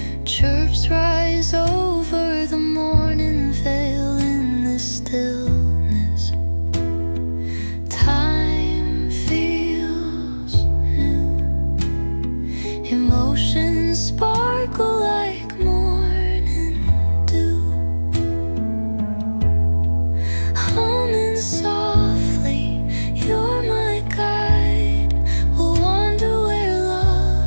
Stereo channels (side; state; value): both; inverted; correlation -1.00